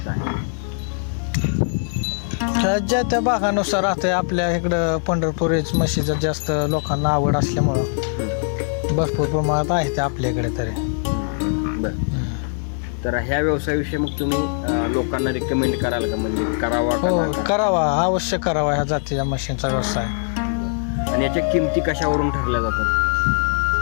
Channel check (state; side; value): silent; right; 65 dB below the other